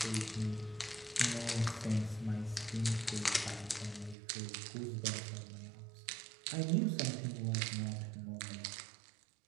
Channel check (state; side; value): drops out; left; at 4.2 s